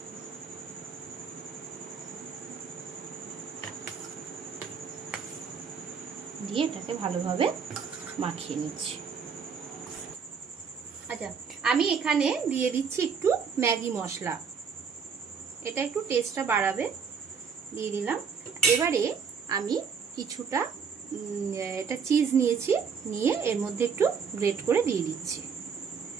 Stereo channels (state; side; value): quieter; left; 6.3 dB